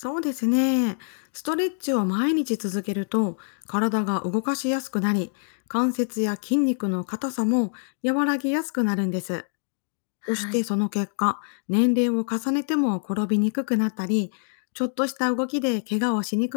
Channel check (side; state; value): right; silent; digital silence